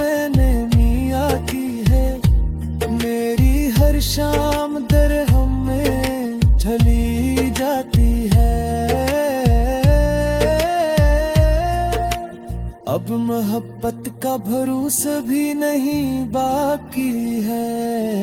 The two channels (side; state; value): both; identical; correlation 1.00